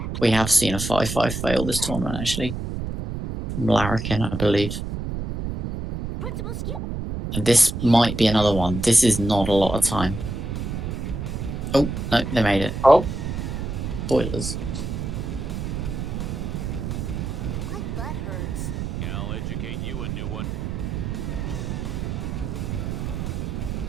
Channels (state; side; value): noise; right; rumble, 4 dB below the sound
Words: We have seen a 5-5 fail this tournament actually. From Larrikin, I believe. Principal skip. And this might be another one. This is not a lot of time. Oh, no, they made it. Oh, Spoilers. My butt hurts. I'll educate you a new one.